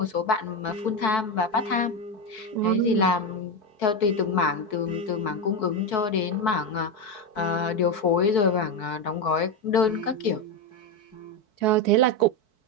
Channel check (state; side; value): late; right; 4.6 ms